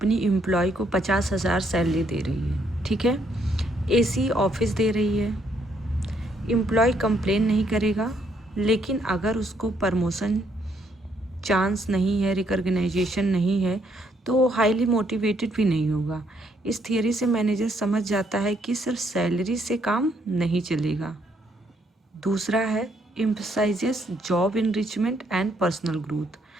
एम्प्लॉय को 50,000 सैलरी दे रही है, ठीक है, एसी ऑफिस दे रही है। एम्प्लॉय कंप्लेन नहीं करेगा, लेकिन अगर उसको प्रमोशन चांस नहीं है, रिकॉग्नाइजेशन नहीं है, तो वो हाईली मोटिवेटेड भी नहीं होगा। इस थियरी से मैनेजर समझ जाता है कि सिर्फ सैलरी से काम नहीं चलेगा। दूसरा है emphasises job enrichment and personal growth.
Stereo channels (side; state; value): both; normal; correlation 0.72